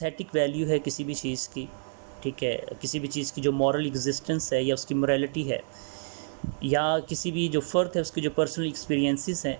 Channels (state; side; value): silent; left; 55 dB below the other